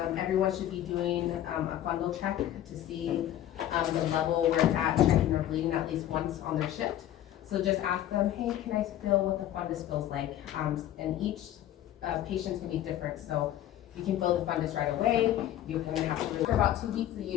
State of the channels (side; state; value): right; quieter; 12.3 dB